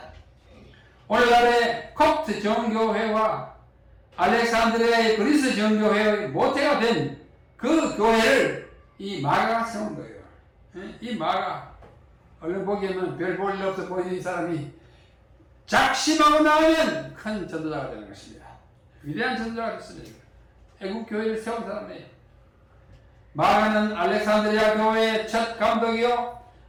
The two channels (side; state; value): both; identical; correlation 1.00